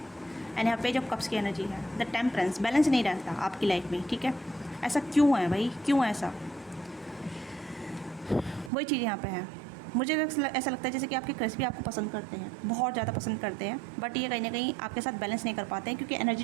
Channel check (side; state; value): left; drops out; at 8.7 s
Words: एंड यहाँ पेज ऑफ कप्स की एनर्जी है, द टेम्परेंस, बैलेंस नहीं रहता आपकी लाइफ में, ठीक है। ऐसा क्यों है भाई, क्यों ऐसा? वही चीज़ यहाँ पे है। मुझे ऐसा लगता है जैसे कि आपके क्रश भी आपको पसंद करते हैं, बहुत ज़्यादा पसंद करते हैं, बट ये कहीं ना कहीं आपके साथ बैलेंस नहीं कर पाते हैं, क्योंकि एनर्जी